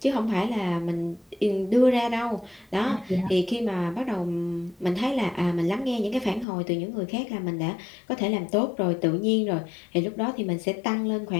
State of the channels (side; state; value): right; drops out; at 6.5 s